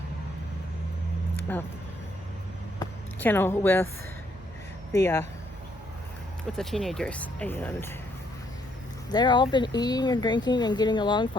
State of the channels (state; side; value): normal; both; correlation 0.70